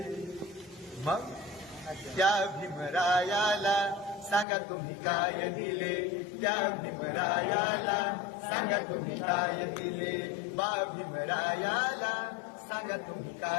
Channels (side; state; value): right; drops out; at 4.5 s